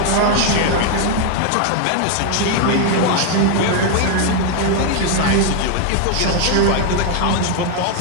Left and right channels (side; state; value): both; different; correlation 0.00